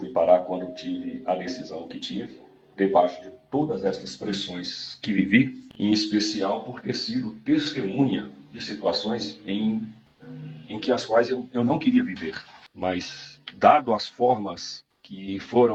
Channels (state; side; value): identical; both; correlation 1.00